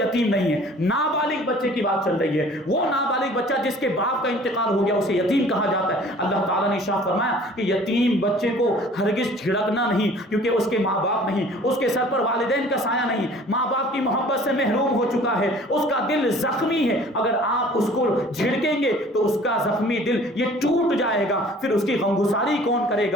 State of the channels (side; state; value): both; normal; correlation 0.50